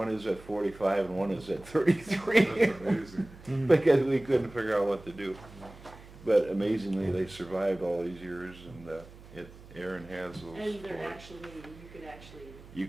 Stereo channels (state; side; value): noise; right; hum, 19 dB below the sound